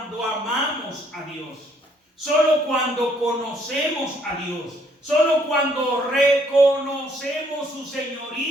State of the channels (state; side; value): normal; both; correlation 0.66